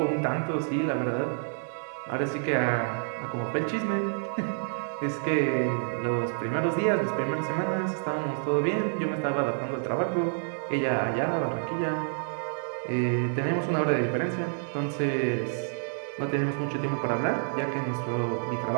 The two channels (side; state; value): left; silent; 59 dB below the other